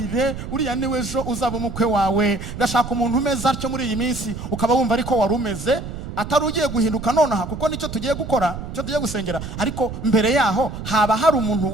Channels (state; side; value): noise; right; rumble, 9 dB below the sound